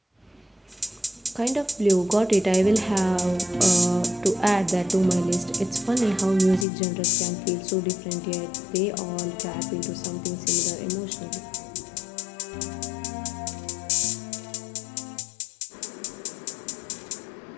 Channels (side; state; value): right; drops out; at 6.7 s